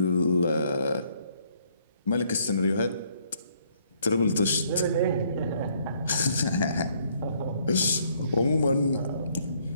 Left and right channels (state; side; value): inverted; both; correlation -0.67